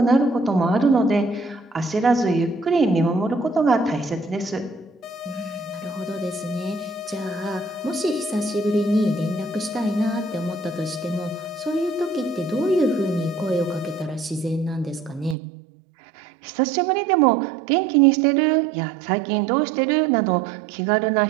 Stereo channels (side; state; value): left; drops out; at 15.4 s